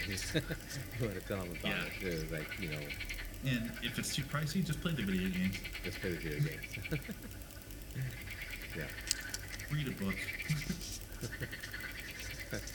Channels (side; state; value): both; identical; correlation 1.00